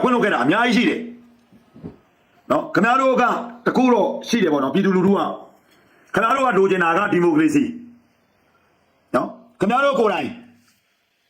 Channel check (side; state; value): both; identical; correlation 1.00